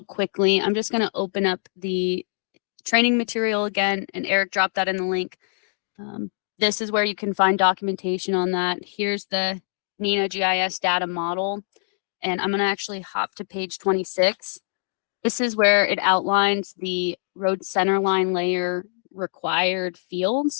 quickly, I'm just going to open up the training material again, and Eric dropped that in the link. This is where you can find documentation on that. Here's the NINA GIS data model, and I'm going to actually hop to page 26. This is where it outlines the road centerline layer required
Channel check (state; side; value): silent; right; digital silence